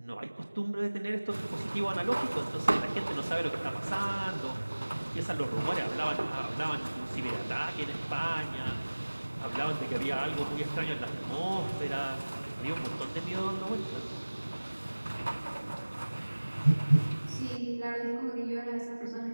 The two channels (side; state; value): both; inverted; correlation -1.00